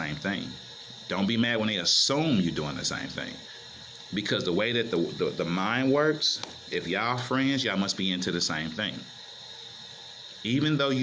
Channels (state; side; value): identical; both; correlation 1.00